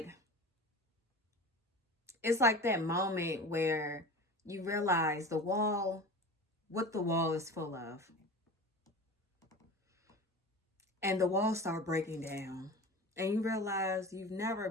it's like that moment where you realize the wall what the wall is full of. And the walls start breaking down. And you realize you've never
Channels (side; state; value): both; normal; correlation 0.34